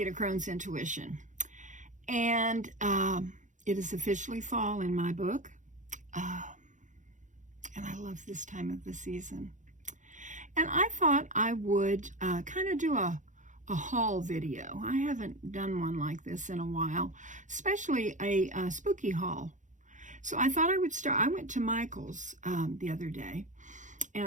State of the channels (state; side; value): late; left; 0.36 ms